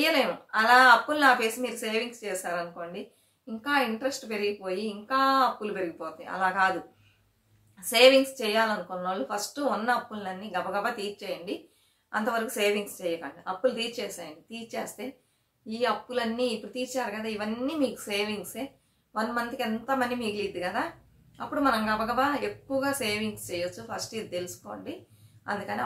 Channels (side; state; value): both; identical; correlation 1.00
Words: అలా అప్పుల్ని ఆపేసి మీరు సేవింగ్స్ చేశారనుకోండి ఇంకా ఇంట్రెస్ట్ పెరిగిపోయి ఇంకా అప్పులు పెరిగిపోతాయి. అలా కాదు, సేవింగ్స్ చేయాలనుకున్న వాళ్ళు ఫస్ట్ ఉన్న అప్పులన్నీ గబగబా తీర్చేయండి. అంతవరకు సేవింగ్స్ చేయకండి, అప్పులు తీర్చేసేయండి. తీర్చేస్తే ఈ అప్పులన్నీ ఇప్పుడు తీర్చారు కదా, ఇవన్నీ మీకు సేవింగ్సే. 1 మంత్కి ఎంత మనీ మిగిలిద్ది కదా, అప్పుడు మనం గబగబా ఎక్కువగా సేవింగ్స్ చేయొచ్చు. ఫస్ట్ ఇది తెలుసుకోండి. అందుకని